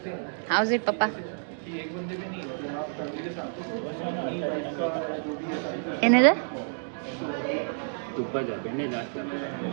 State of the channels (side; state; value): left; silent; digital silence